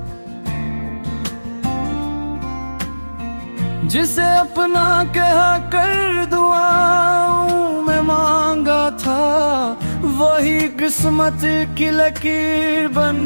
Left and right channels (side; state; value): both; inverted; correlation -1.00